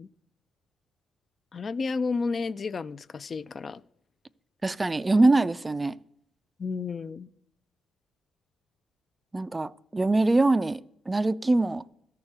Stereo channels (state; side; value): normal; both; correlation 0.96